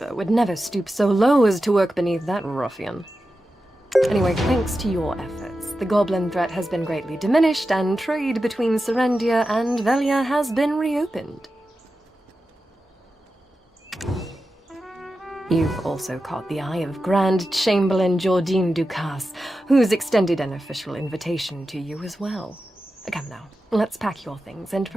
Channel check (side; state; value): both; normal; correlation 0.92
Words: would never stoop so low as to work beneath that ruffian. Anyway, thanks to your efforts, the goblin threat has been greatly diminished, and trade between Serendia and Velia has been reopened. You've also caught the eye of Grand Chamberlain Jordine Ducasse, who's extended an official invitation to you as well. Come now, let's pack your things and